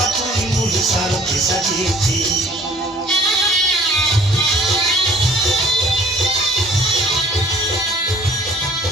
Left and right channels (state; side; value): normal; both; correlation 0.54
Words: মুলু সারথি সাজিয়েছি